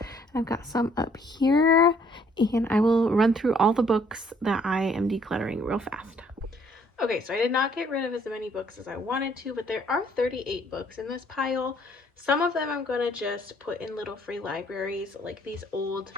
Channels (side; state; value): both; normal; correlation 0.63